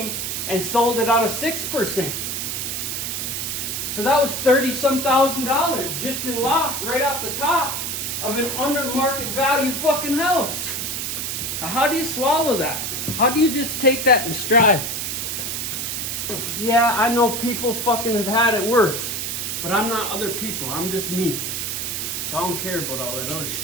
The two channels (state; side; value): noise; right; hiss, 3 dB below the sound